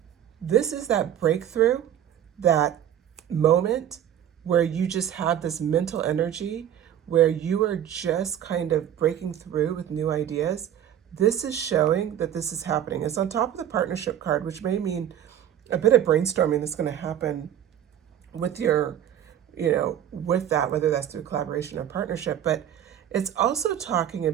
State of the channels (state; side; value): quieter; left; 10.4 dB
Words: This is that breakthrough, that moment where you just have this mental energy, where you are just kind of breaking through with new ideas. This is showing that this is happening. It's on top of the partnership card, which may mean a bit of brainstorming that's going to happen with your, with that, whether that's through collaboration or partnership. But it's also talking